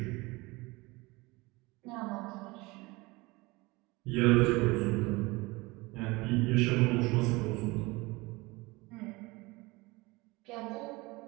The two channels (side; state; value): left; quieter; 23.2 dB